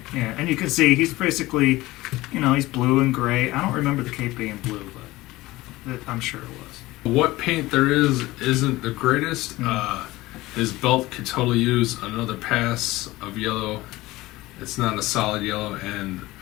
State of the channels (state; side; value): quieter; right; 18.8 dB